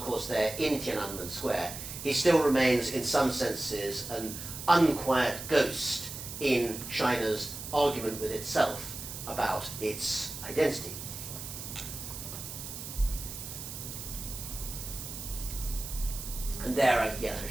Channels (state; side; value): noise; right; hiss, 9 dB below the sound